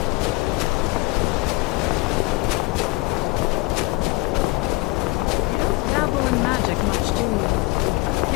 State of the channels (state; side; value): quieter; right; 23.1 dB